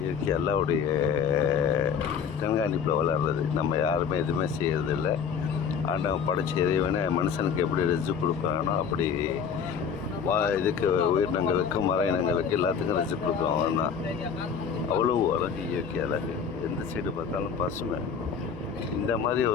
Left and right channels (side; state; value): right; quieter; 6.9 dB